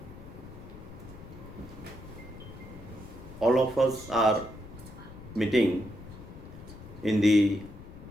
All of us are meeting in the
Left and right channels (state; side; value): noise; left; rumble, 15 dB below the sound